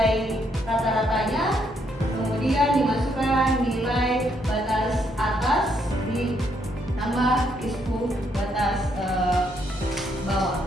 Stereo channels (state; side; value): normal; both; correlation 0.74